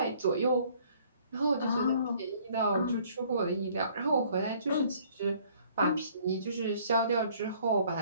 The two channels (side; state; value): both; inverted; correlation -0.59